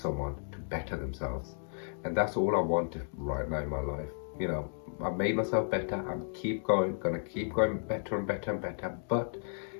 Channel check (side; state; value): right; silent; digital silence